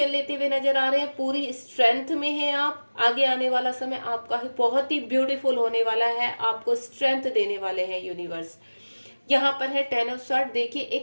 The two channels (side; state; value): both; inverted; correlation -1.00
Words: लेते हुए नजर आ रहे हैं, पूरी स्ट्रेंथ में हैं आप। आगे आने वाला समय आपका बहुत ही ब्यूटीफुल होने वाला है, आपको स्ट्रेंथ देने वाले हैं यूनिवर्स। यहाँ पर है टेन ऑफ स्वार्ड। देखिए